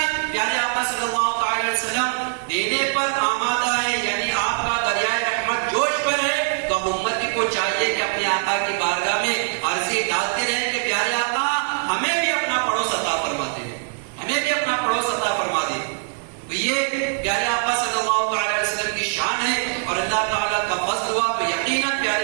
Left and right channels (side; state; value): left; silent; 64 dB below the other